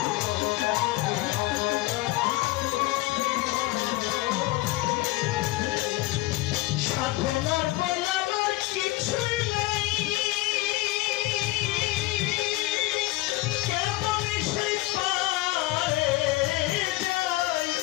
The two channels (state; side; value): quieter; right; 19.3 dB